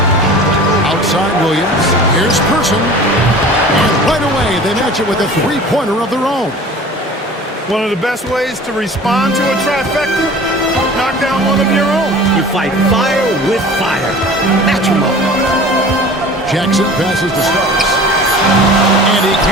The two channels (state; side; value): normal; both; correlation 0.42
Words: Outside Williams. Here's Person. And right away, they match it with a 3-pointer of their own. One of the best ways to respond to a trifecta, knock down one of your own. You fight fire with fire. Match him up. Jackson passes to Starks. And he